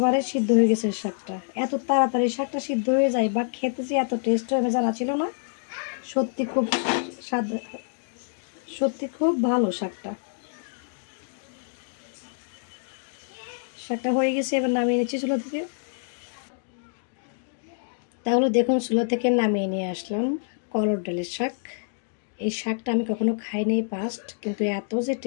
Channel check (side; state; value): right; silent; digital silence